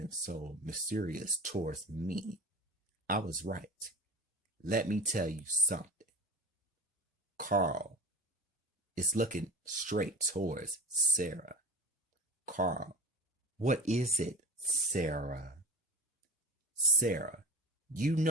so mysterious towards me, I was right. Let me tell you something. Carl is looking straight towards Sarah. Carl, what is it, Sarah? Sarah, you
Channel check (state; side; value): normal; both; correlation 0.30